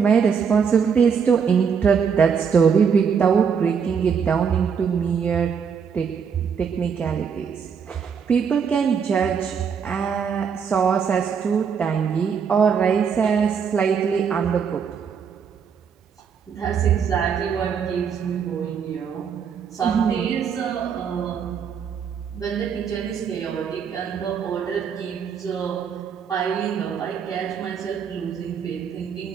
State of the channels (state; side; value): quieter; left; 6.7 dB